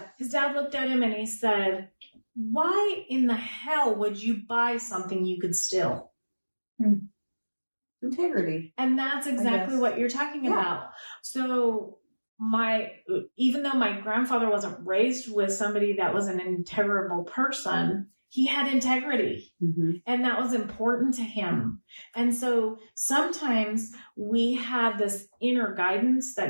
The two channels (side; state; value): both; inverted; correlation -1.00